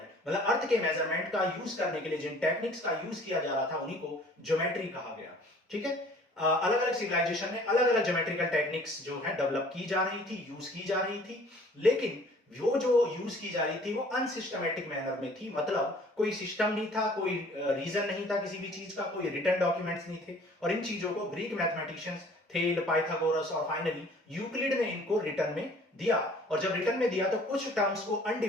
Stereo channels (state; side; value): normal; both; correlation 0.52